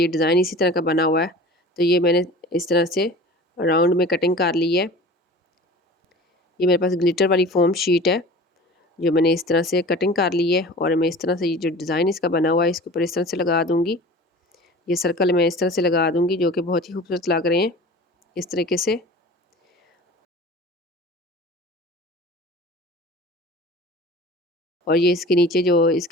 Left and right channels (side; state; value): both; normal; correlation 0.39